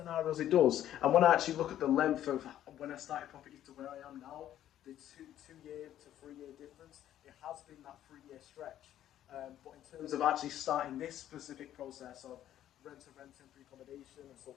it does. And when I actually look at the length of when I started property to where I am now, the 2-year to 3-year difference, it has been that 3-year stretch. But in terms of actually starting this specific process of rent-to-rent temporary accommodation and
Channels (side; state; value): right; quieter; 11.8 dB